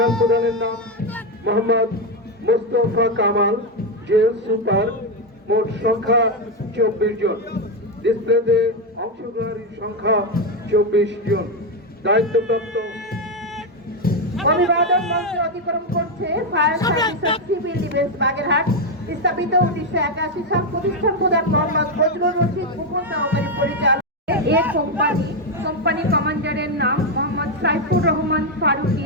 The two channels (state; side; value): normal; both; correlation 0.06